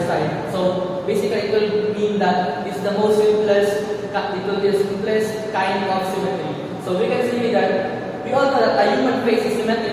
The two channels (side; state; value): both; identical; correlation 1.00